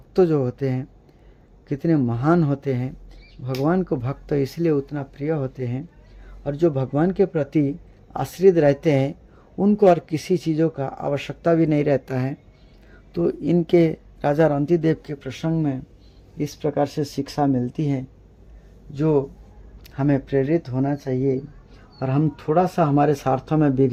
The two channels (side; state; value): both; identical; correlation 1.00